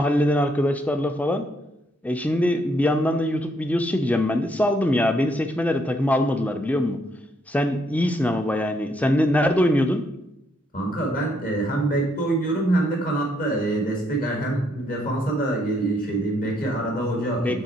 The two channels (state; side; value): normal; both; correlation 0.72